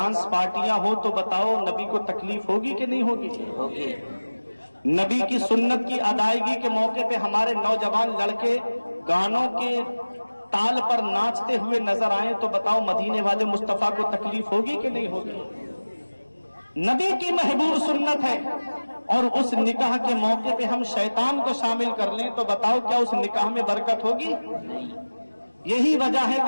پارٹیاں ہو تو بتاؤ نبی کو تکلیف ہوگی کہ نہیں ہوگی؟ ہوگی. نبی کی سنت کی ادائیگی کے موقع پہ ہمارے نوجوان لڑکے گانوں کے تال پر ناچتے ہوئے نظر آئیں تو بتاؤ مدینے والے مصطفیٰ کو تکلیف ہوگی کہ نہیں ہوگی؟ نبی کی محبوب سنت ہے. اور اس نکاح کے موقع پہ ہم شیطان کو شامل کر لیں تو بتاؤ کیا اس نکاح میں برکت ہوگی؟ یہی وجہ ہے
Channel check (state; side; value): inverted; both; correlation -1.00